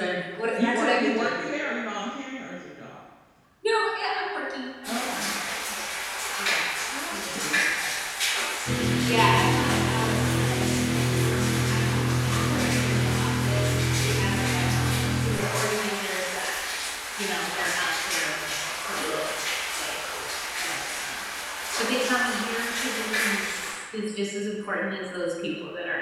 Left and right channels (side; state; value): both; identical; correlation 1.00